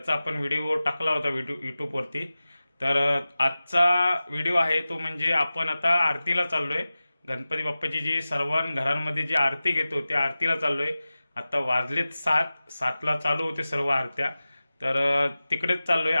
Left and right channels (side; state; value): both; inverted; correlation -0.96